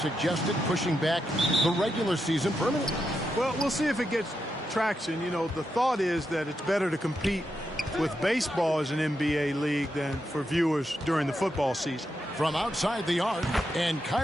pushing back the regular season permanently. Well, we'll see if it gets traction. You know, the thought is that it's better to compete with baseball as an NBA league than for viewers during the football season. From outside the arc, and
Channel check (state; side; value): normal; both; correlation 0.85